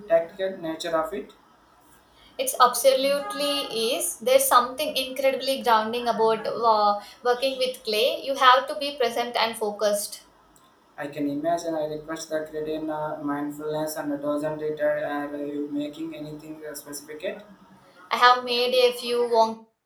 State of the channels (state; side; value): identical; both; correlation 1.00